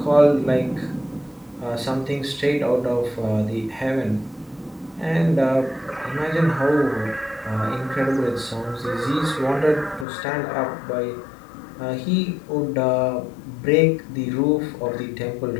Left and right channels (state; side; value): drops out; right; at 10.1 s